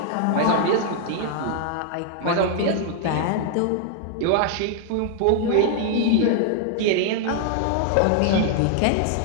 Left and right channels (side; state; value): both; different; correlation 0.00